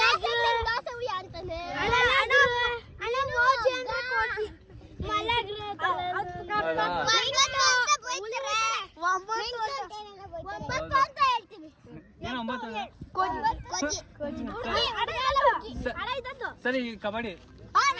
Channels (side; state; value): both; identical; correlation 1.00